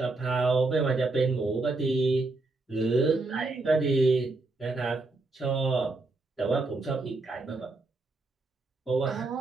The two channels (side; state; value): left; quieter; 3.3 dB